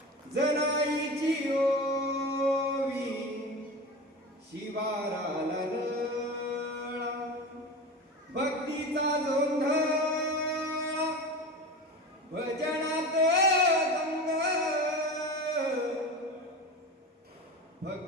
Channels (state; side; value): normal; both; correlation 0.29